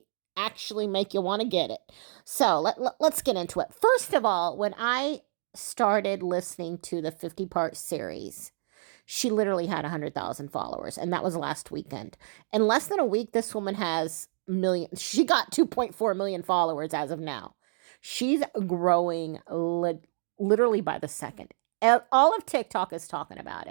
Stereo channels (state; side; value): silent; left; digital silence